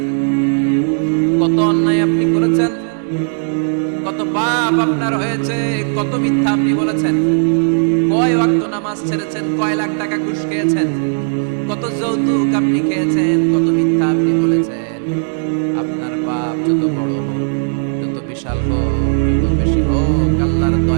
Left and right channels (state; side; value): silent; left; 66 dB below the other